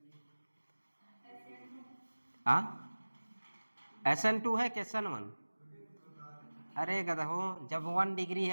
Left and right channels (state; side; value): inverted; both; correlation -1.00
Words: हाँ SN2 है कि SN1, अरे गधो, जब 1 डिग्री